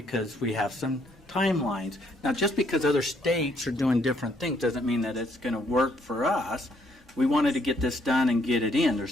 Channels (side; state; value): both; normal; correlation 0.69